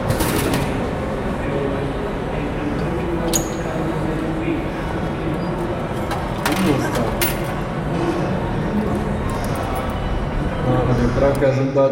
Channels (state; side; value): identical; both; correlation 1.00